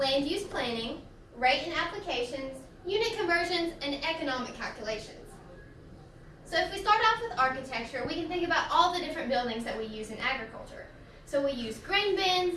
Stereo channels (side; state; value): both; identical; correlation 1.00